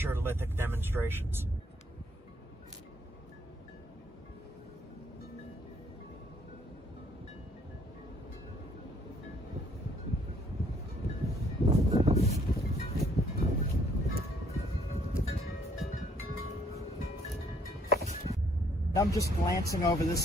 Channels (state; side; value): normal; both; correlation 0.65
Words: lithic demonstrations. I'm just glancing over this